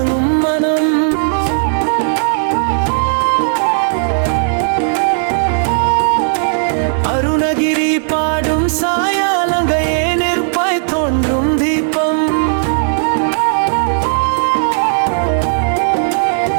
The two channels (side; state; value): left; silent; digital silence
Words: மனம். அருணகிரி பாடும் சாயாலங்கையே நெருப்பாய் தோன்றும் தீபம்.